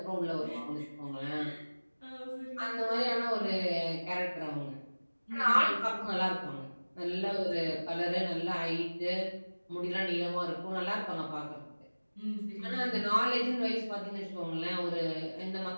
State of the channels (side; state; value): both; inverted; correlation -1.00